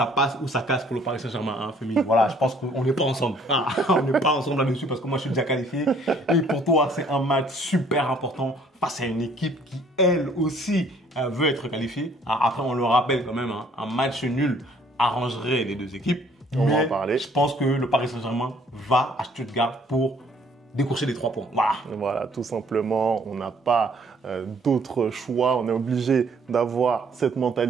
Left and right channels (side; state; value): both; normal; correlation 0.60